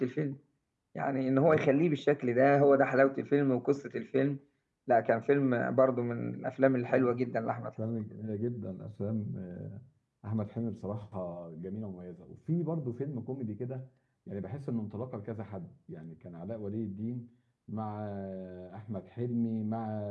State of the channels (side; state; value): both; identical; correlation 1.00